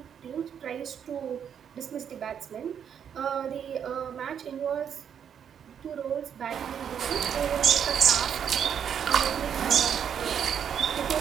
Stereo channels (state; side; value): quieter; left; 8.2 dB